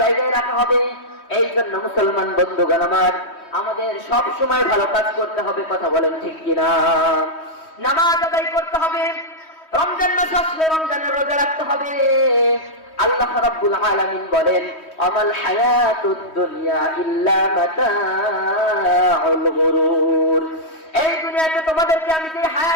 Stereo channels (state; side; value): late; right; 3.1 ms